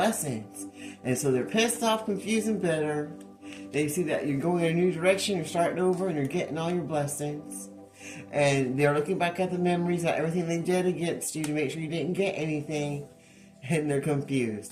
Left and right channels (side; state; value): both; identical; correlation 1.00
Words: And so they're pissed off, confused, and bitter. They see that you're going in a new direction, you're starting over, and you're getting all your blessings. And they're looking back at the memories of everything they did against you to make sure you didn't get anything. And they're